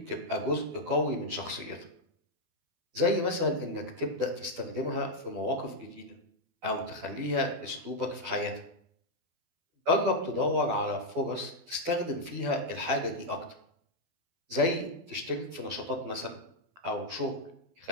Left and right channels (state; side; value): late; left; 12 ms